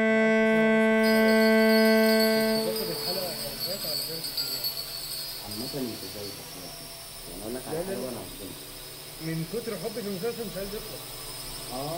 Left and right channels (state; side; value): identical; both; correlation 1.00